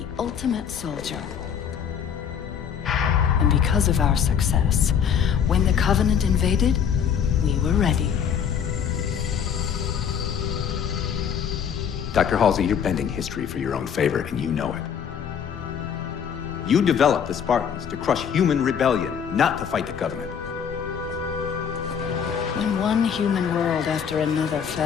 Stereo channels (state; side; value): quieter; right; 7.8 dB